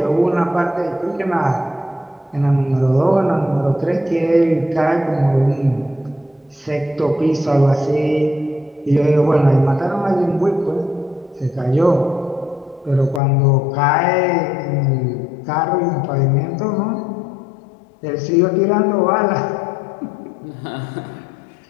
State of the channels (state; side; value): drops out; right; at 13.2 s